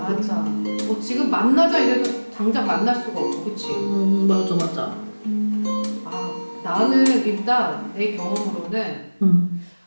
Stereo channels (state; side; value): inverted; both; correlation -1.00